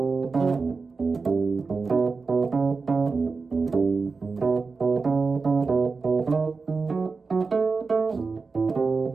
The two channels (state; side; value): quieter; left; 4.4 dB